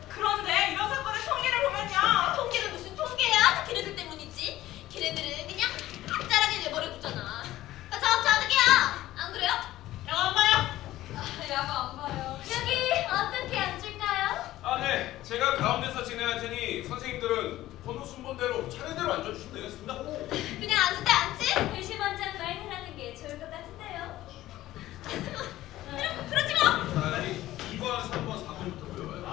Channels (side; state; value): right; quieter; 15.2 dB